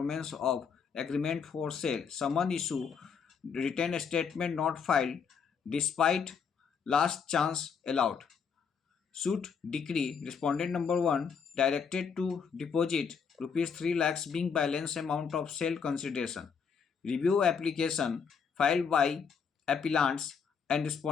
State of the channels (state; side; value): quieter; right; 6.3 dB